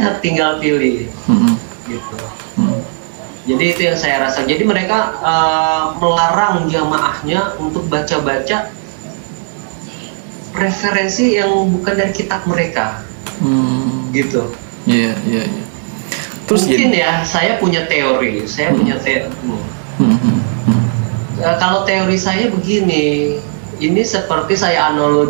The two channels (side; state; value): left; silent; digital silence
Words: tinggal pilih. Gitu. Jadi itu yang saya rasa. Jadi mereka melarang jamaahnya untuk baca-baca referensi yang bukan dari kitab mereka. Gitu. Iya. Terus mungkin ya, saya punya teori. Kalau teori saya begini, ini seperti saya